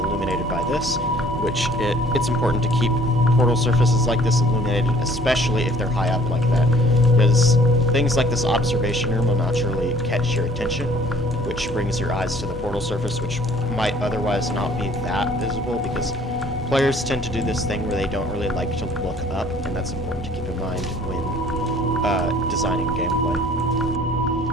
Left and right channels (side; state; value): both; normal; correlation 0.56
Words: by this, which it's important to keep portal surfaces like this illuminated, especially if they're high up like that, because things like this observation room will naturally catch your attention, which brings your eyes to the portal surface, which might otherwise not be that visible, because players tend to do this thing where they don't really like to look up, and that's important to keep in mind when designing gameplay.